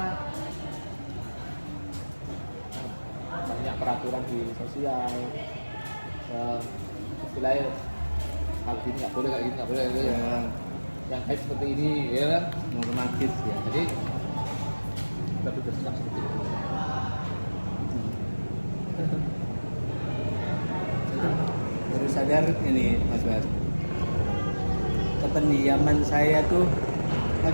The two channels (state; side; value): inverted; both; correlation -1.00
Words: banyak peraturan di sosial, istilahnya hal gini nggak boleh, kayak gini nggak boleh, kayak gini. Ya, Yang baik seperti ini, ya kan? normatif ya. Jadi lebih bersikap seperti itu. Baru sadar ini Mas Bas, kependiaman saya tuh